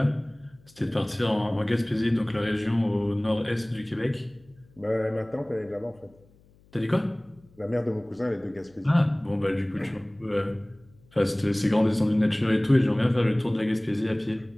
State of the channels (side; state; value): left; noise; hum, 29 dB below the sound